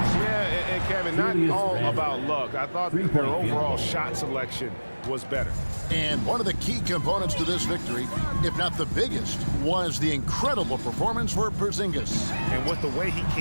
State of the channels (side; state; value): both; inverted; correlation -1.00